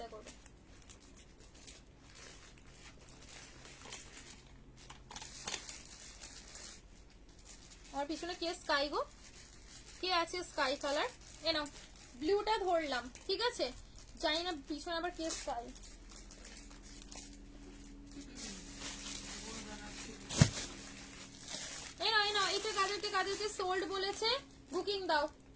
করবে। আমার পিছনে কে স্কাই গো, কে আছে স্কাই কালার? এ নাও ব্লুটা ধরলাম, ঠিক আছে? জানি না পিছনে আবার কে স্কাই। এটা কাদেরকে সোল্ড বলেছে বুকিং দাও,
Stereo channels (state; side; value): identical; both; correlation 1.00